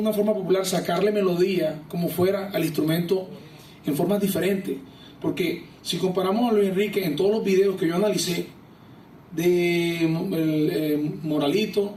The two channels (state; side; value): identical; both; correlation 1.00